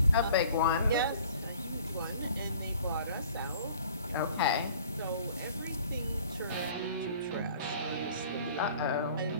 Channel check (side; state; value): both; inverted; correlation -0.51